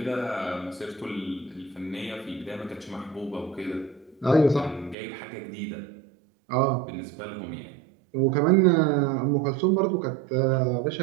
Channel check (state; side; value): drops out; left; at 5.0 s